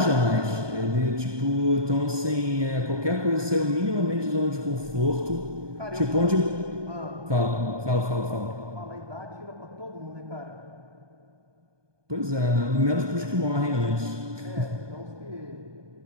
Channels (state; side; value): late; left; 1.2 ms